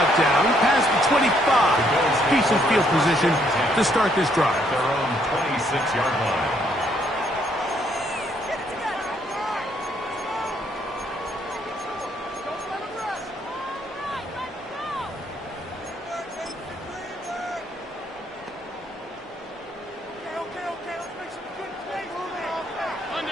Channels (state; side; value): normal; both; correlation 0.70